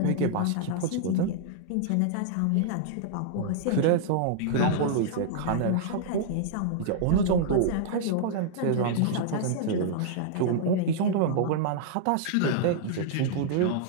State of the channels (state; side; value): different; both; correlation -0.01